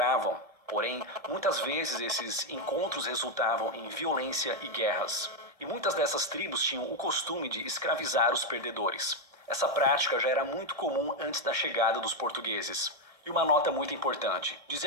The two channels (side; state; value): left; late; 1.7 ms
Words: Porém, muitas vezes esses encontros resultavam em violência e guerras. E muitas dessas tribos tinham o costume de escravizar os perdedores. Essa prática já era muito comum antes da chegada dos portugueses. E uma nota muito importante: